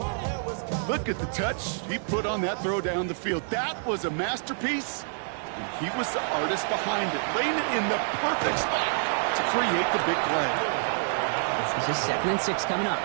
Look at the touch he put on that throw down the field. That was a masterpiece. And he was the artist behind it, laying it in the perfect spot to create the big play. This is 2nd and 6 coming up.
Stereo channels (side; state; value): left; silent; digital silence